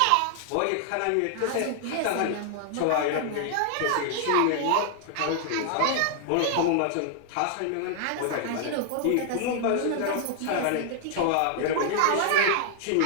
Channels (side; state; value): both; different; correlation 0.00